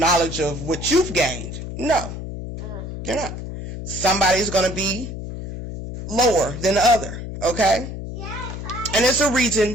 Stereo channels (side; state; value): left; noise; hum, 8 dB below the sound